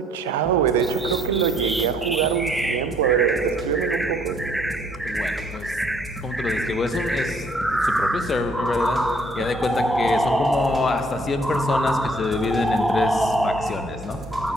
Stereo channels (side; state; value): both; normal; correlation 0.63